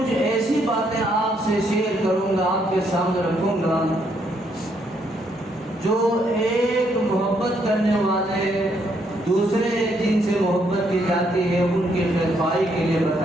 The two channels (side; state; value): both; normal; correlation 0.73